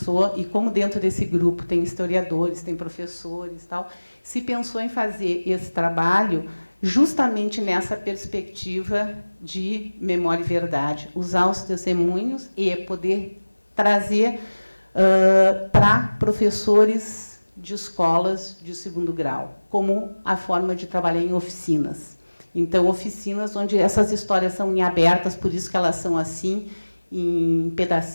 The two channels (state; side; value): inverted; both; correlation -1.00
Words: e como dentro desse grupo tem historiadores, tem professores, tal, se pensou em fazer esse trabalho justamente nessa perspectiva de memória e verdade, usar os testemunhos e poder trazer para professores de escolas de segundo grau, como a forma de trabalhar em oficinas. Então, oficinas onde essas histórias são em abertas, por isso que elas são assim, em